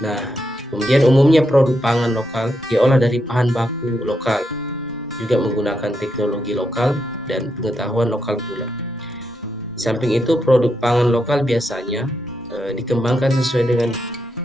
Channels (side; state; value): both; normal; correlation 0.82